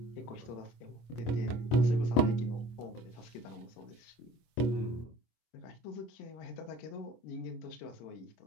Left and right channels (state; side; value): late; right; 25 ms